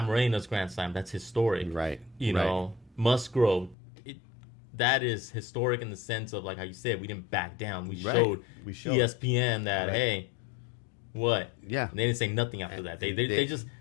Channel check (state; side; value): drops out; right; at 3.8 s